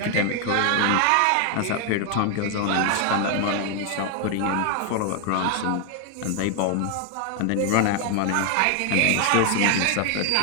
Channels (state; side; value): different; both; correlation 0.00